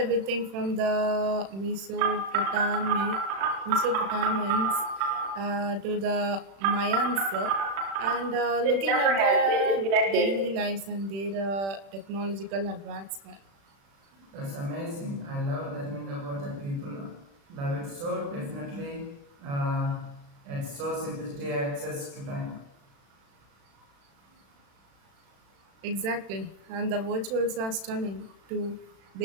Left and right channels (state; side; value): late; left; 36 ms